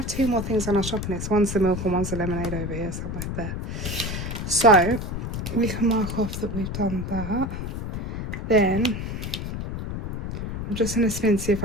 2 more things on our shopping list. One's the milk and one's the lemonade over here somewhere there. So we can mark off that we've done that. Then I'm just going to spin, see if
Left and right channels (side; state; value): left; noise; rumble, 5 dB below the sound